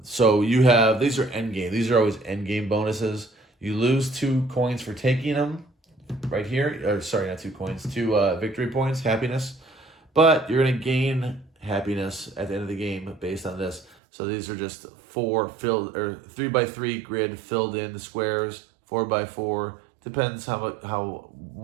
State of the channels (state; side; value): drops out; left; at 14.0 s